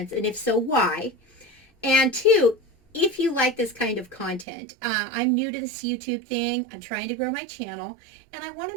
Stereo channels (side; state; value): left; drops out; at 4.5 s